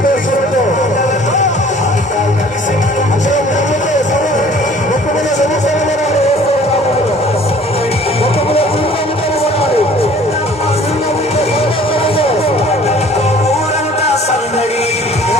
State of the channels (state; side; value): normal; both; correlation 0.52